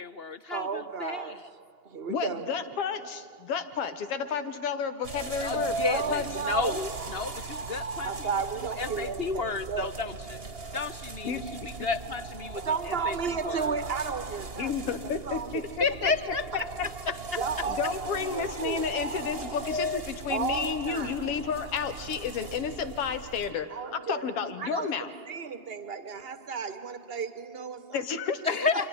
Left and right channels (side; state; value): left; late; 2.8 ms